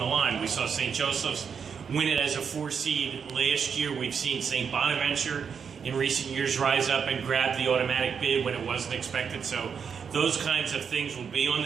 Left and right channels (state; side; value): quieter; left; 6.7 dB